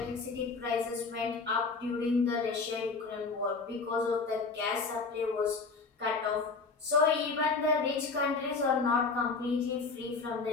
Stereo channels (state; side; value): quieter; right; 4.3 dB